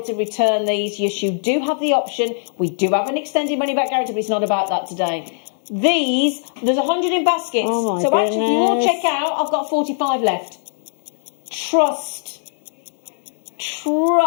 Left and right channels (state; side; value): silent; right; digital silence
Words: to return these. Yes, you do have the option. We do have an extended money-back guarantee, but it's not about that today. These, there's 100 in baskets. Oh my so actually, if you all goodness. check out, I've got 45 left. Trust